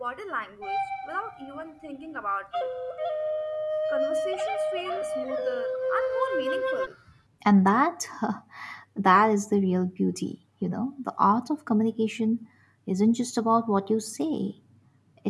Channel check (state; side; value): identical; both; correlation 1.00